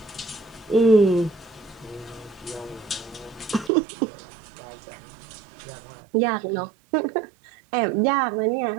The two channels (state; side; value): drops out; left; at 3.7 s